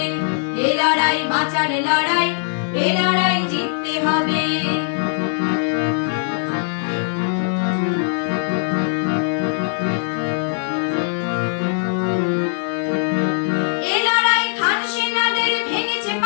এ লড়াই বাঁচার লড়াই, এ লড়াই জিততে হবে।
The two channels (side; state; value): right; silent; digital silence